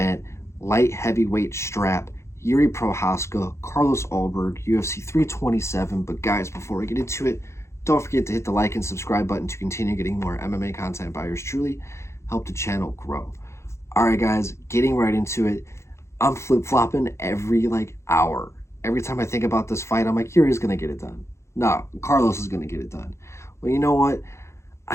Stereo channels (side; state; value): right; late; 0.13 ms